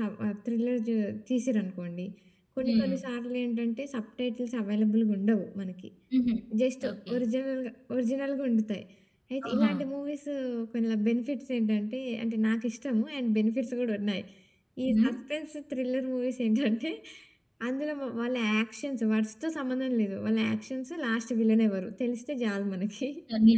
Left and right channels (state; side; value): identical; both; correlation 1.00